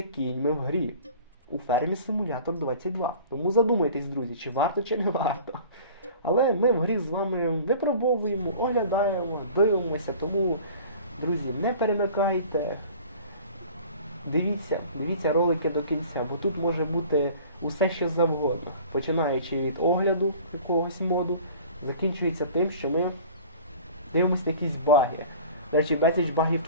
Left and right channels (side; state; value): both; inverted; correlation -0.44